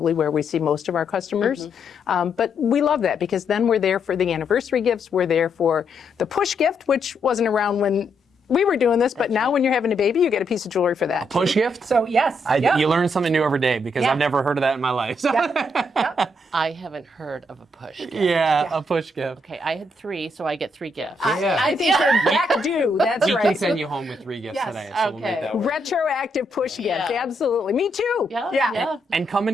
where we see most of our customers. But we love that because then we're there for the anniversary gifts. We're there for the push gift, which wasn't around when we were doing this, but now when you're having a baby, you get a piece of jewelry for that. Push gift? So yes. You learn something new every day because I've never heard of that in my life. So. I haven't heard of a push gift. Yeah, a push gift. Okay, I had 3, so I get 3 gifts. I think you're back due. That's We right. can send you home with 3 gifts today, so we'll make that work. Retroactive push gift. Yeah. Absolutely. Me too. Yeah. And come in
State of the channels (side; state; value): both; normal; correlation 0.77